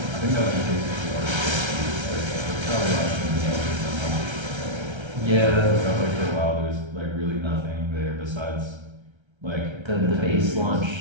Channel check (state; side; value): late; left; 1.3 ms